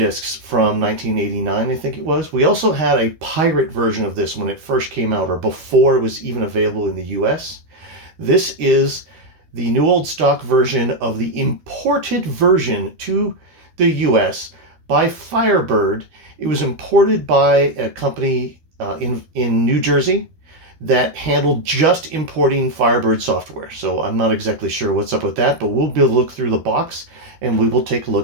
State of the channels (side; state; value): left; late; 13 ms